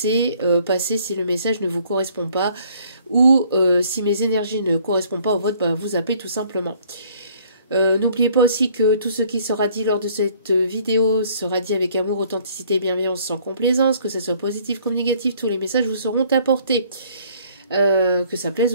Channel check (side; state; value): both; inverted; correlation -0.60